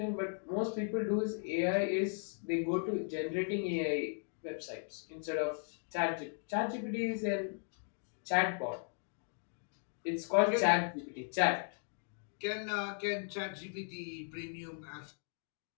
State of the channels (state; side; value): silent; right; 53 dB below the other